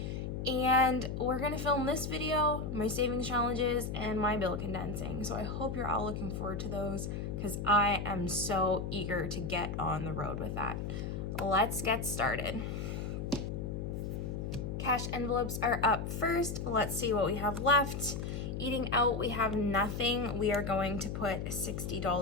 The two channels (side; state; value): left; noise; hum, 4 dB below the sound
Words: And we're gonna film this video, my savings challenges, and my bill condensing. So I hope you're all looking forward to those, because I am so eager to get on the road with that. Let's get started. Cash envelopes are up first. Let's see what we have left. Eating out, we have nothing. We are going to put